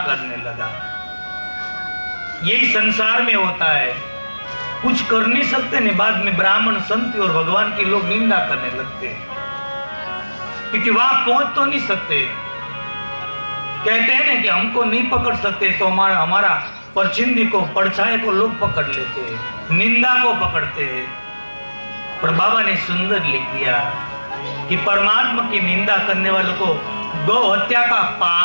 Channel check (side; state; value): both; inverted; correlation -1.00